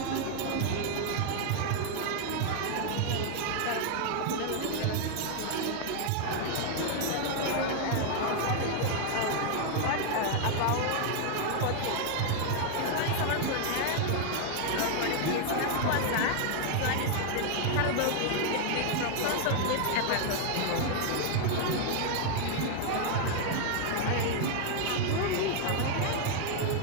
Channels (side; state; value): both; different; correlation 0.00